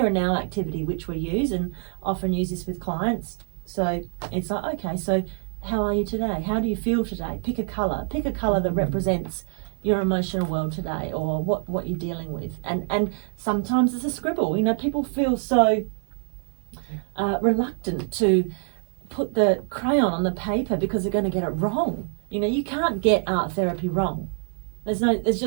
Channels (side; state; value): left; silent; 62 dB below the other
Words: and now activity which we use and often use this with clients. So it's like, okay, so how are you today? How do you feel today? Pick a colour that represents your emotional world today, or what you're dealing with. And sometimes it's a scribble. You know, people feel so reluctant to put the crayon on the paper because they're going to get it wrong. You know, you can't get art therapy wrong. There's